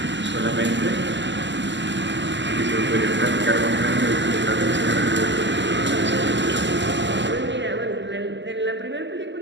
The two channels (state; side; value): late; left; 0.53 ms